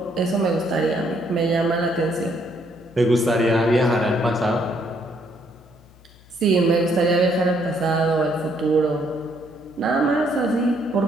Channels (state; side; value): noise; left; hum, 25 dB below the sound